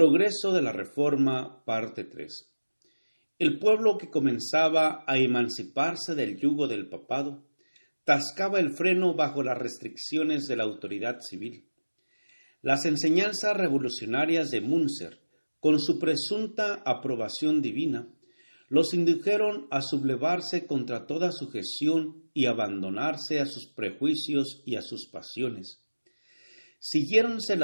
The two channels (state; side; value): inverted; both; correlation -1.00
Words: de la Reforma, parte 3. El pueblo que comenzaba a emanciparse del yugo del papado, tascaba el freno bajo las restricciones de la autoridad civil. Las enseñanzas revolucionarias de Münzer, con su presunta aprobación divina, los indujeron a sublevarse contra toda sujeción y abandonarse a sus prejuicios y a sus pasiones. Siguiéronse